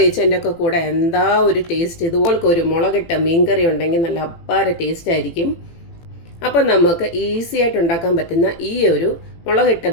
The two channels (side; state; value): right; late; 18 ms